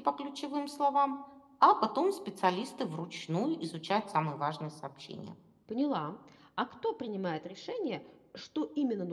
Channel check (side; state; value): both; identical; correlation 1.00